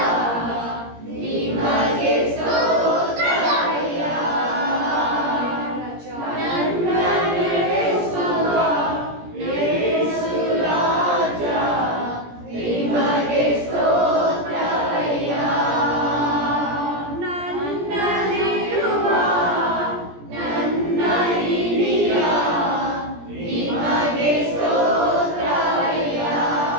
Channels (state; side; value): late; left; 17 ms